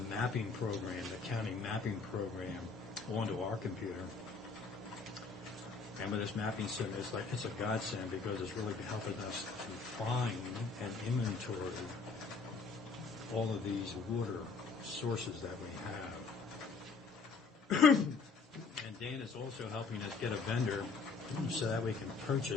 program, the county mapping program, onto our computer. And with this mapping system, it's a godsend because it's really helping us to find and inventory all of these water sources that we have. And Dan is also helping us get a vendor so that we can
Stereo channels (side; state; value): right; quieter; 4.6 dB